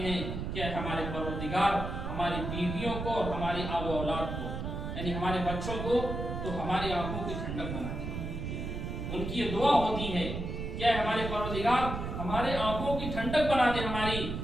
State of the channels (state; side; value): noise; right; rumble, 5 dB below the sound